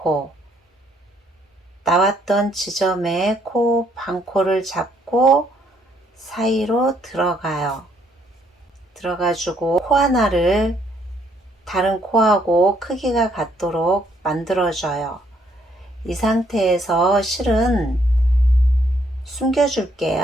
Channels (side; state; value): both; normal; correlation 0.69